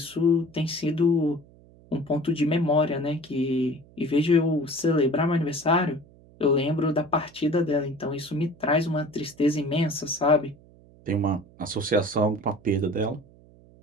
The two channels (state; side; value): noise; right; hum, 25 dB below the sound